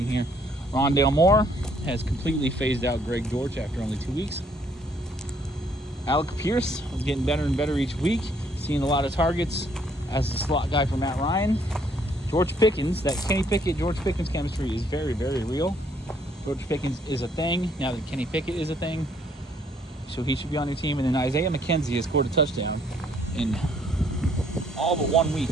here. Rondale Moore has completely phased out Greg Dortch after only 2 weeks. Alec Pierce is getting better and better each week, seeing a lot of targets as the slot guy for Matt Ryan. George Pickens, that Kenny Pickett, George Pickens chemistry is very, very real. George Pickens is a thing now that Kenny Pickett is a thing, so he should be on your team. And then Isaiah McKenzie has scored a touchdown in all but 1 week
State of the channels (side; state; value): both; normal; correlation 0.66